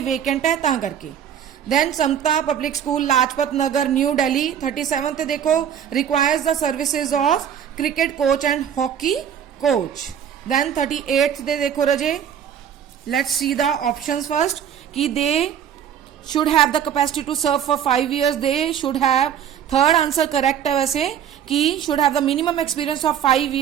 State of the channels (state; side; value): quieter; left; 9.0 dB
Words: वेकेंट है ता करके। Then Samta public school Lajpat Nagar New Delhi 37 देखो, requires the services of cricket coach and hockey coach. Then 38 दे देखो रजे, let's see the options first, कि they should have the capacity to serve for 5 years, they should have, third answer correct है वैसे, कि should have the minimum experience of 5